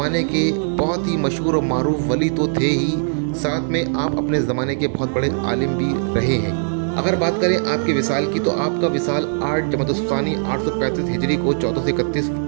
के बहुत ही मशहूर और मारूफ वली तो थे ही, साथ में आप अपने ज़माने के बहुत बड़े आलिम भी रहे हैं। अगर बात करें आपके विसाल की, तो आपका विसाल 8 जमादुस्सानी 835 हिजरी को 1431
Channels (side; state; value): left; silent; 63 dB below the other